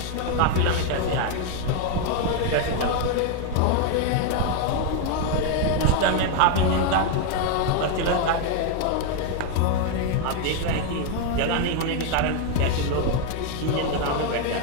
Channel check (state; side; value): different; both; correlation 0.01